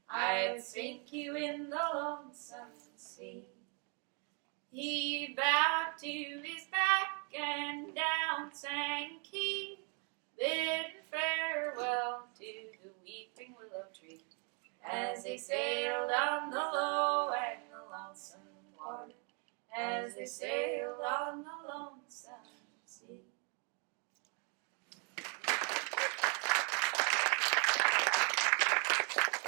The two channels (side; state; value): left; quieter; 36.8 dB